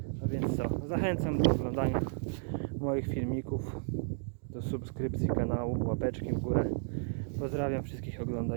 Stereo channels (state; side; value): silent; left; digital silence